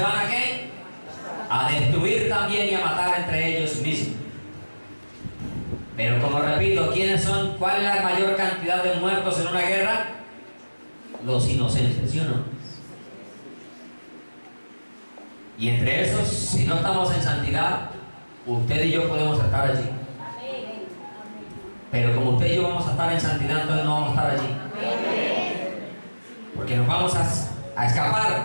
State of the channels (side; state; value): both; inverted; correlation -1.00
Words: a ¿qué? A destruir también y a matar entre ellos mismos. Pero como repito, ¿quiénes son? ¿Cuál es la mayor cantidad de muertos en una guerra? Los inocentes, ¿sí o no? Y entre esos, si no estamos en santidad, usted y yo podemos estar allí. Pero como usted y yo vamos a estar en santidad, entonces no vamos a estar allí. Porque nos vamos a